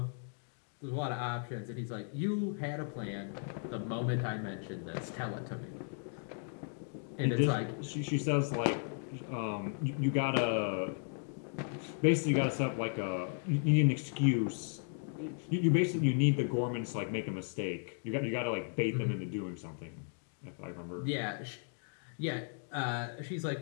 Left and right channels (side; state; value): right; silent; 54 dB below the other